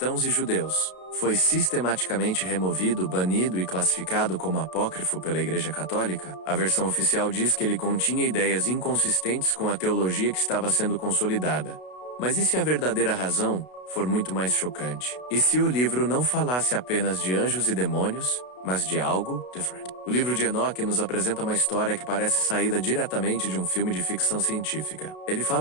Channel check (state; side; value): late; right; 32 ms